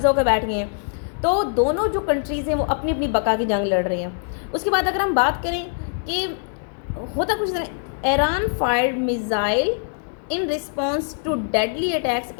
होकर बैठ गए हैं। तो दोनों जो कंट्रीज़ हैं वो अपनी अपनी बका की जंग लड़ रही हैं। उसके बाद अगर हम बात करें कि होता कुछ तरह, Iran fired missile in response to deadly attacks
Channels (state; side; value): silent; right; 64 dB below the other